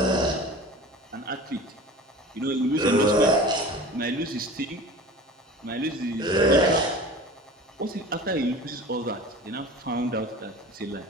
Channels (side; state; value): both; normal; correlation 0.38